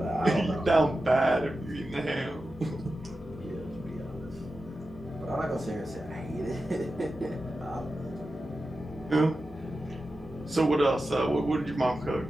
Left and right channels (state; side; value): normal; both; correlation 0.92